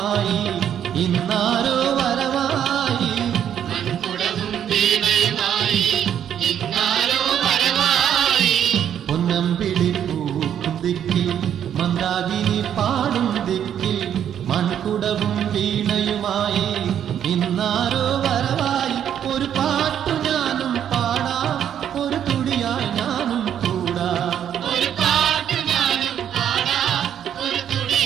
ഇന്നാരോ വരവായി. പൊന്നമ്പിളി പൂക്കും ദിക്കിൽ മന്ദാകിനി പാടും ദിക്കിൽ മൺകുടവും വീണയുമായി ഇന്നാരോ വരവായി. ഒരു പാട്ടു ഞാനും പാടാം ഒരു തുടിയായി ഞാനും കൂടാം.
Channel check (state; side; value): quieter; left; 9.5 dB